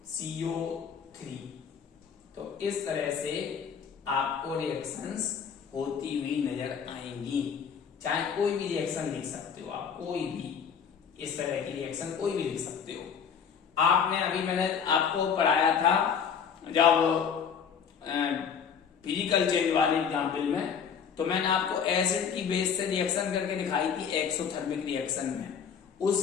तो इस तरह से आपको रिएक्शंस होती हुई नजर आएंगी। चाहे कोई भी रिएक्शन लिख सकते हो आप, कोई भी इस तरह की रिएक्शन कोई भी लिख सकते हो। आपने अभी मैंने आपको पढ़ाया था जब फिजिकल चेंज वाले एग्जाम्पल में, तो मैंने आपको एसिड की बेस से रिएक्शन करके दिखाई थी एक्सोथर्मिक रिएक्शन में।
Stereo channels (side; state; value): right; quieter; 7.0 dB